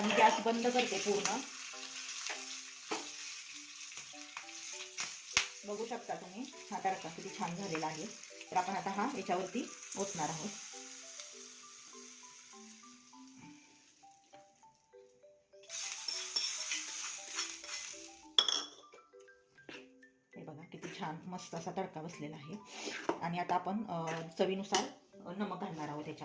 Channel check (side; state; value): both; identical; correlation 1.00